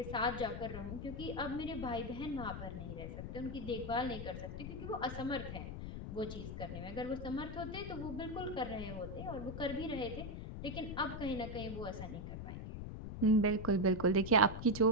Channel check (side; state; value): left; noise; rumble, 7 dB below the sound